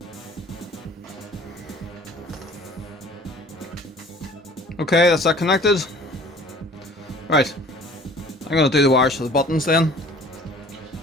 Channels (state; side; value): normal; both; correlation 0.49